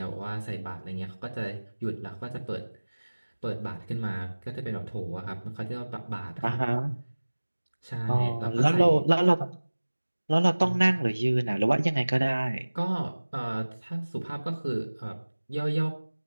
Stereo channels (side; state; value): both; inverted; correlation -1.00